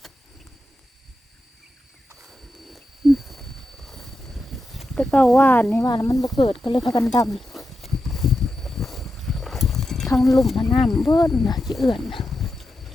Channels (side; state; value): both; normal; correlation 0.88